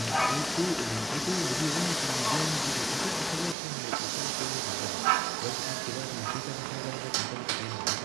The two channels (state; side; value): drops out; left; at 3.6 s